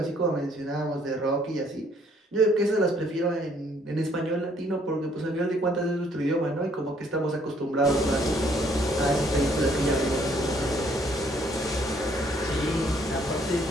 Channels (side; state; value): both; normal; correlation 0.65